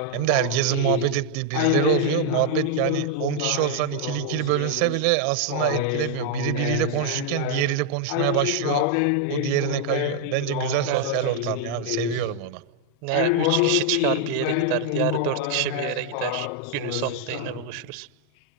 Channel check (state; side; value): different; both; correlation 0.00